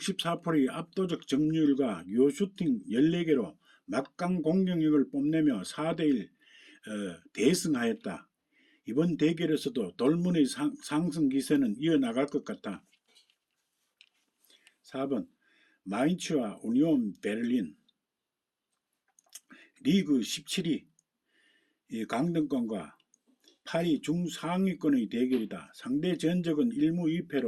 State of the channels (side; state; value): both; identical; correlation 1.00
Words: 압도적 점유율과 유효슈팅 14개로 막강 공격력을 뽐내며 4대1 대승하였다. 이번 대결에서도 돌문의 상승 기세는 이어나갈 것 같다. 4번 마인츠와 우니온 베를린. 리그 17위 강등권과 8위 중상위권의 대결이다. 상대 전적은 1무